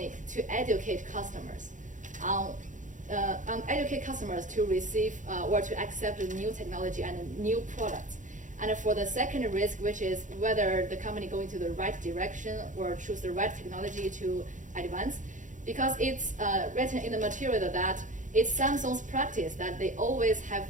to educate customers educate customers to receive or to accept the new technology and new products. And for the second risk, which is whether the company go into the right direction or choose the right technology to advance, because it's written in the material that it's Samsung's practice that they always have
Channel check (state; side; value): late; left; 0.37 ms